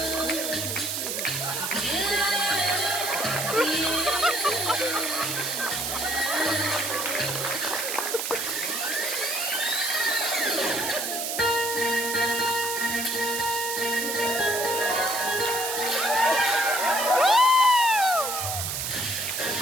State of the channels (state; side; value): noise; right; hiss, 2 dB below the sound